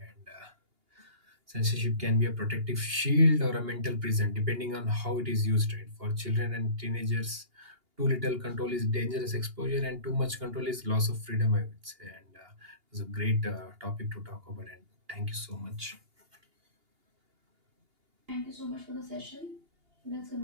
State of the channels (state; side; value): late; left; 2.8 ms